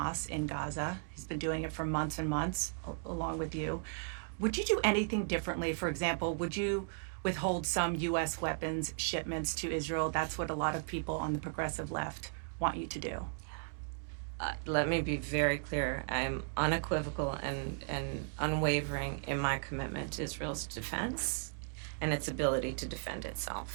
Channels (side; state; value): left; silent; digital silence